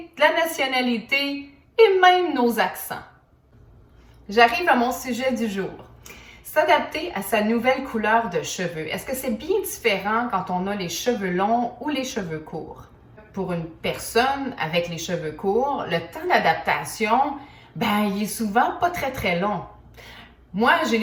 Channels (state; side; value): identical; both; correlation 1.00